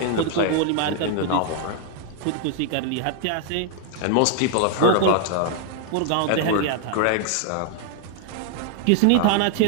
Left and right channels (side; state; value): both; different; correlation 0.00